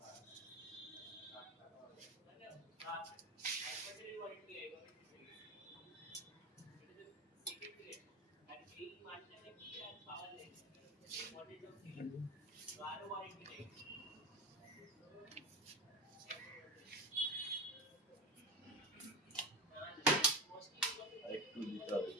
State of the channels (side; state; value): both; normal; correlation 0.23